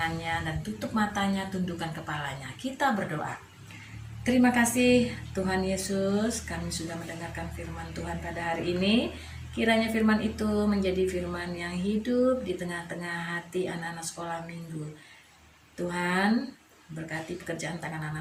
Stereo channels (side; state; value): both; identical; correlation 1.00